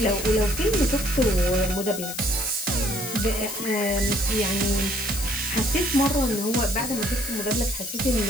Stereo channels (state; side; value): noise; left; hiss, 7 dB below the sound